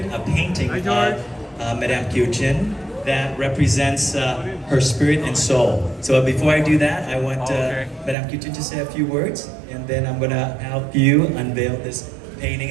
a painting of Madame Kieu Chin that represents her spirit and soul. So before I do that, I want Madame Kieu Chin to say a few words, and then I'm gonna help you unveil this painting,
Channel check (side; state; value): left; drops out; at 8.2 s